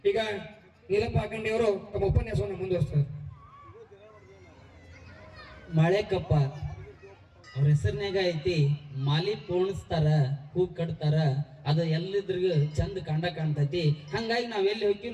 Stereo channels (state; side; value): identical; both; correlation 1.00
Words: ಈಗ ನೀಲಪ್ಪ ಅಖಂಡಿಯವರು ತಮ್ಮ ಉಪನ್ಯಾಸವನ್ನು ಮುಂದುವರಿಸ್ತಾರೆ. ಮಾಳೆಕೊಪ್ಪ ಅವ್ರ ಹೆಸರಿನಾಗ ಐತಿ, ಮಾಲಿ ಪೋಣಿಸ್ತಾರ, ಹೂ ಕಟ್ತಾರ, ಅದು ಎಲ್ಲಿದ್ರಿಗೂ ಚಂದ ಕಾಣ್ತೈತಿ. ಹಂಗಾಗಿ ನಾವ್ ಎಲ್ಲಿ ಹೋಗ್ತೀವಿ